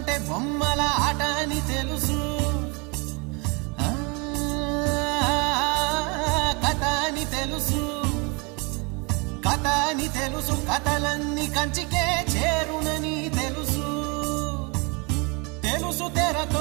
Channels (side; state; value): left; quieter; 30.2 dB